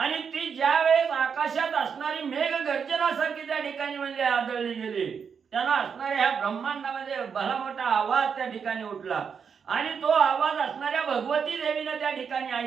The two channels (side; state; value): left; quieter; 6.6 dB